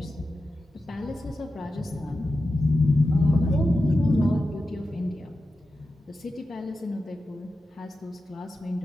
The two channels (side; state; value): both; normal; correlation 0.91